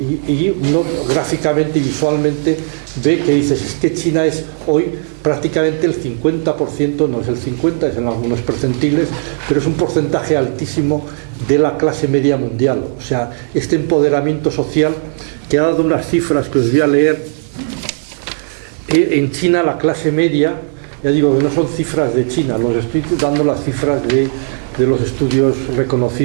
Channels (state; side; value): silent; left; digital silence